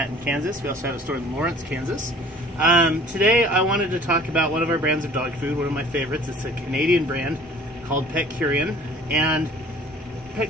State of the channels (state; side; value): normal; both; correlation 0.50